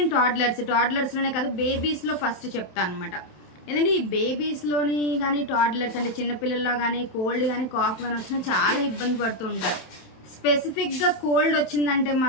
టాడ్లర్స్లోనే కాదు, బేబీస్లో ఫస్ట్ చెప్తాను అనమాట. ఎందుకంటే ఈ బేబీస్లోని కానీ టాడ్లర్స్ అంటే చిన్నపిల్లల్లో కానీ కోల్డ్ కానీ కాఫ్ కానీ వచ్చినా చాలా ఇబ్బంది పడుతూ ఉంటారు. స్పెసిఫిక్గా కోల్డ్ వచ్చిందంటే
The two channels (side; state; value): right; late; 27 ms